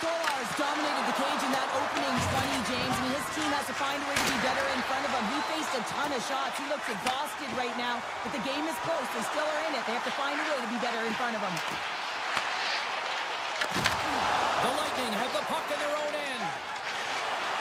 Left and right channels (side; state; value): both; identical; correlation 1.00